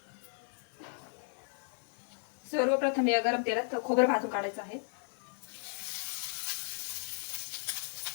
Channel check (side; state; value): right; silent; 55 dB below the other